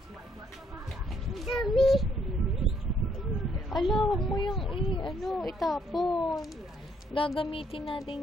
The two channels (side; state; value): both; normal; correlation 0.69